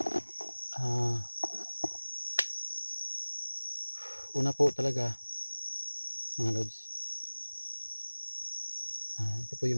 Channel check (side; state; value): both; inverted; correlation -1.00